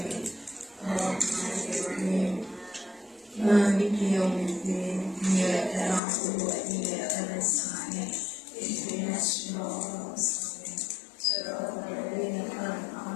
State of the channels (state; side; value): drops out; right; at 6.0 s